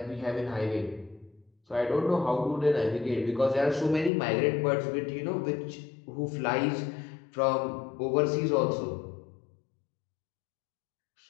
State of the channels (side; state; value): right; drops out; at 4.1 s